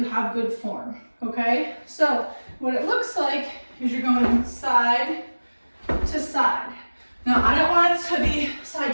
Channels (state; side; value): inverted; both; correlation -1.00